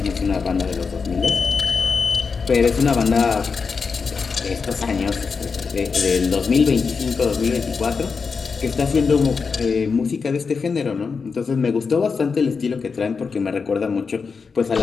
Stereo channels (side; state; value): right; quieter; 5.2 dB